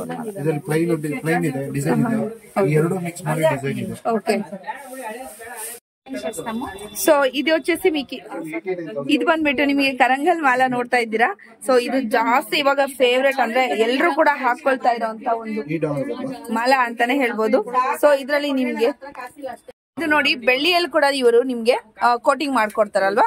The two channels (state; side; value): identical; both; correlation 1.00